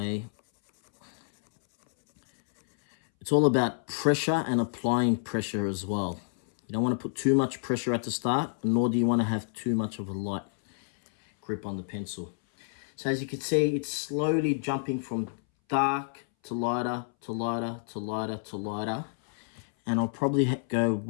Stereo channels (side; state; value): right; silent; 59 dB below the other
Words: It's all about pressure and applying pressure as well. You don't want to put too much pressure at the start, nor do you want to have too much of a light grip on the pencil. So as you can see, it's slowly jumping from dark to lighter, to lighter, to lighter, to lighter. And I'll probably go